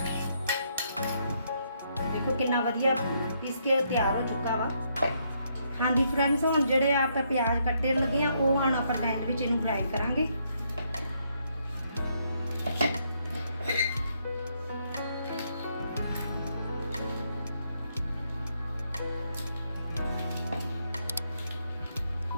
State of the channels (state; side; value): inverted; both; correlation -0.74